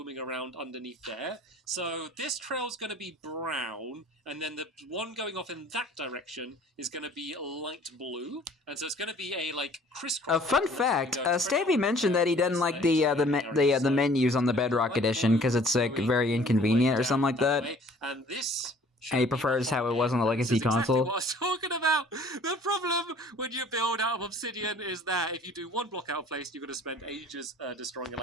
around underneath there. So this trail's going to be brown, and then the one going off in that direction is going to be light blue, and so it's going to be a like crisscross. A fun fact: Stampy mentioned that he doesn't like the menus on the Bedrock Edition because it's like very inconvenient or something like that. And this. And he prefers how it was on the Legacy console. Exactly what I was talking out. The problem when you build out of obsidian is that if you do one block out of place, you're going to spend ages destroying it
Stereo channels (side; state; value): both; normal; correlation 0.52